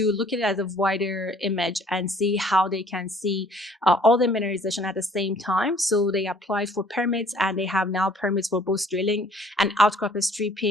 look at it as a wider image and see how they can see all the mineralization at the same time. So they applied for permits, and they have now permits for both drilling and outcrop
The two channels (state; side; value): normal; both; correlation 0.57